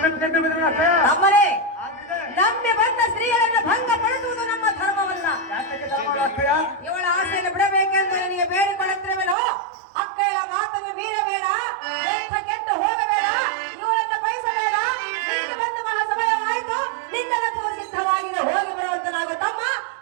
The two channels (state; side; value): drops out; left; at 9.3 s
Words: ನೆಮ್ಮೆ ಬಂದವನು ಅಕ್ಕಯ್ಯ. ನಮ್ಮನೆ ಆಗ್ಲೇ ನಂಬಿ ಬಂದ ಸ್ತ್ರೀಯರನ್ನು ಭಂಗ ಪಡಿಸುವುದು ನಮ್ಮ ಧರ್ಮವಲ್ಲ. ಯಾತಕ್ಕೆ ಧರ್ಮವಲ್ಲ ಅಕ್ಕಯ್ಯ? ಇವಳ ಆಸೆಯನ್ನು ಬಿಡಬೇಕೆಂದು ನನಗೆ ಬೇಡಿಕೊಳ್ಳುತ್ತಿರುವೆನೋ ಅಕ್ಕಯ್ಯಳ ಮಾತನ್ನು ಮೀರಬೇಡ, ಎಂಥ ಕೆಟ್ಟು ಹೋಗಬೇಡ, ಇವಳನ್ನು ಬಯಸಬೇಡ. ನೀನು ಬಂದು ಬಹಳ ಸಮಯವಾಯಿತು, ನಿನ್ನ ರಥವು ಸಿದ್ಧವಾಗಿದೆ, ಹೋಗಿ ಬರುವಂತನಾಗು ತಮ್ಮ.